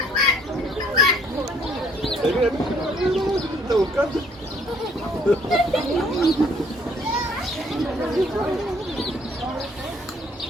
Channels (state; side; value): normal; both; correlation 0.62